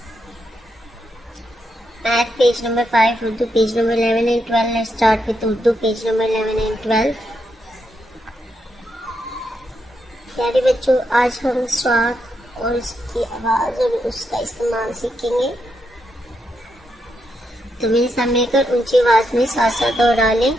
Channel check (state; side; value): normal; both; correlation 0.82